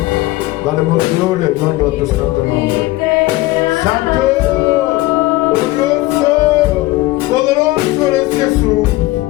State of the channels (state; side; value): quieter; right; 19.0 dB